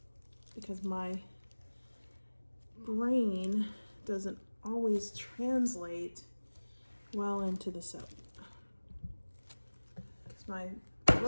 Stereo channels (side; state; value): both; inverted; correlation -1.00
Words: because my brain doesn't always translate well into the soap. Because my